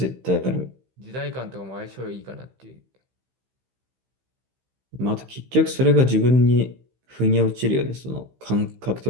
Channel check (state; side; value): late; left; 16 ms